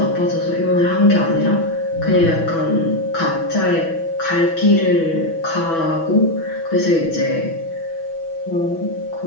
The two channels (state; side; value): late; right; 6.1 ms